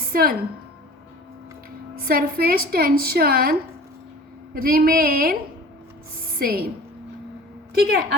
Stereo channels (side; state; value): both; normal; correlation 0.42